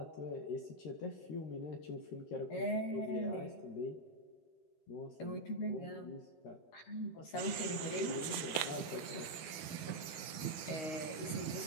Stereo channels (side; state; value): right; late; 12 ms